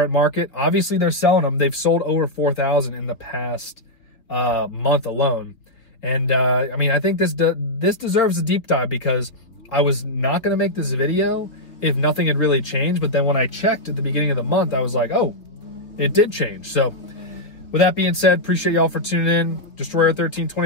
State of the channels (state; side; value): late; right; 3.4 ms